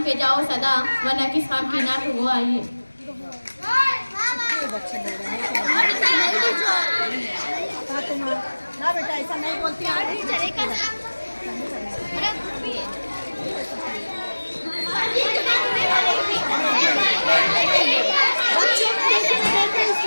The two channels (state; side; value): inverted; both; correlation -1.00